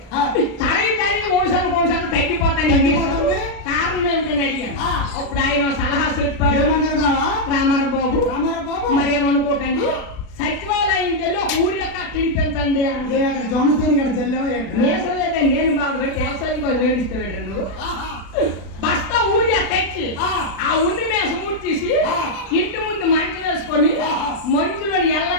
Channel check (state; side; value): late; right; 36 ms